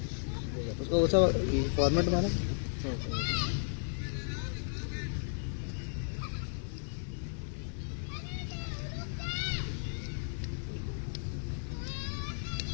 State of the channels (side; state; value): right; silent; 55 dB below the other